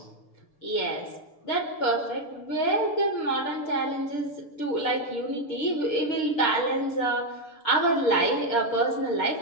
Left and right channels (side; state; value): right; late; 6.8 ms